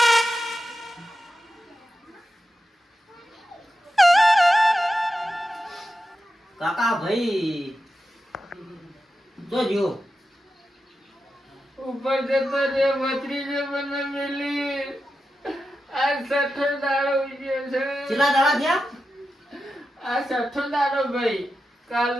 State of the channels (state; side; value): normal; both; correlation 0.90